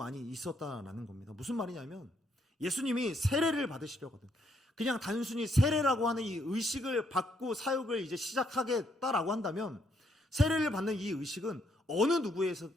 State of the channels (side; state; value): both; normal; correlation 0.73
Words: 있었다라는 겁니다. 무슨 말이냐면, 예수님이 세례를 받으시려거든, 그냥 단순히 세례라고 하는 이 의식을 받고 사역을 이제 시작하겠다라고 한다면, 세례를 받는 이 의식은 어느